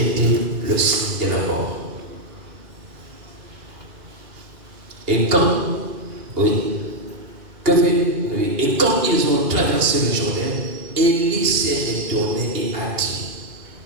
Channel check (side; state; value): left; late; 2.8 ms